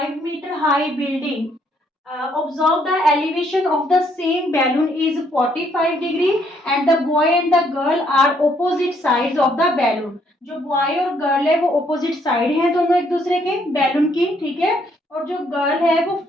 metre high building, observe the elevation of the same balloon is 45 degree and the boy and the girl are opposite sides of the balloon। जो boy और girl है वो opposite side हैं दोनों एक दूसरे के balloon की, ठीक है। और जो गर्ल है वो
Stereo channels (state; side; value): normal; both; correlation 0.69